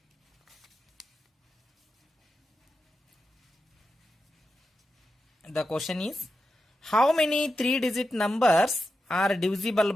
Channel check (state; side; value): normal; both; correlation 0.89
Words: The question is, how many 3-digit numbers are divisible